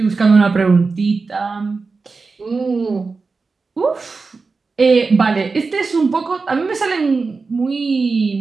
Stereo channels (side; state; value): left; quieter; 4.3 dB